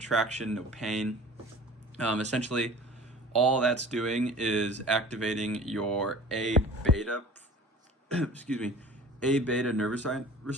no pain. Essentially, all that's doing is activating your A beta, excuse me, A beta nervocyte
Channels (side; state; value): both; normal; correlation 0.43